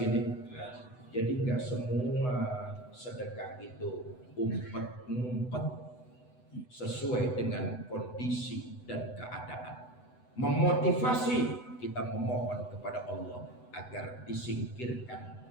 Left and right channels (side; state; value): right; late; 8.0 ms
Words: Jadi gak semua sedekah itu umpet-ngumpet, sesuai dengan kondisi dan keadaan. Memotivasi, kita memohon kepada Allah agar disingkirkan